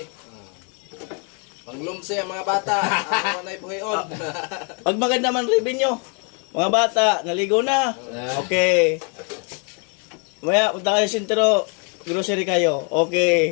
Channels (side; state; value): right; quieter; 36.6 dB